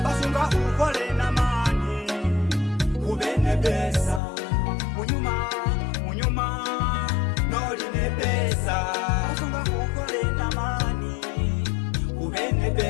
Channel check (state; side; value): drops out; right; at 4.2 s